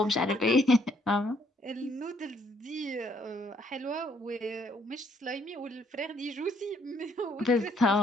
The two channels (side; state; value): both; normal; correlation 0.68